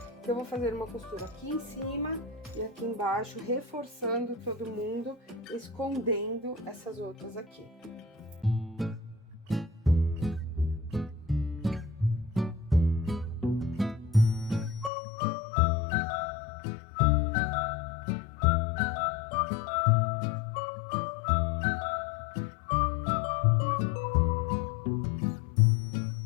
Eu vou fazer uma costura aqui em cima e aqui embaixo, reforçando todo mundo, escondendo essas outras aqui.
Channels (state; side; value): drops out; right; at 14.9 s